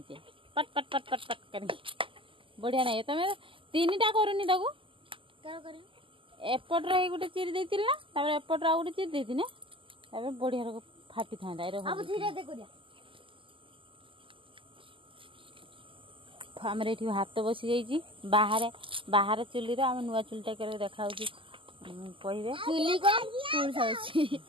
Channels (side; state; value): left; late; 0.25 ms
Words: पट पट पट पट पट कर बढ़िया नहीं तुम तीन टा करूनी ताको एपट गोटे चिरी देती ना तापर एपट आ गोटे चिरी देती ना बढ़िया फाटी था आम हाथ बसी जाइए बाहर बाहर चुली आम नुआ चुलटा के देखा कहे